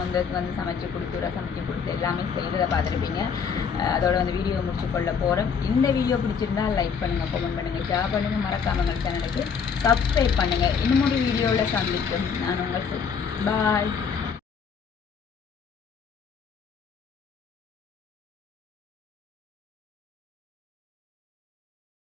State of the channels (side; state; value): right; quieter; 6.3 dB